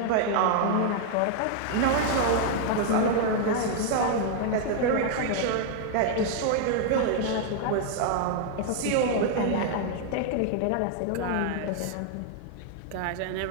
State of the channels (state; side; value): different; both; correlation 0.00